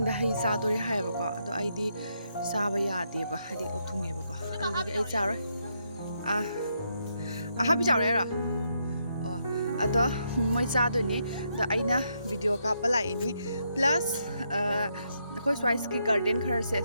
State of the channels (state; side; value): inverted; both; correlation -0.78